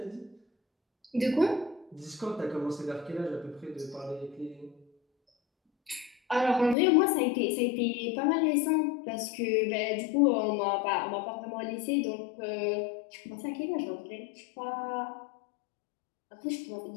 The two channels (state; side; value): drops out; right; at 6.8 s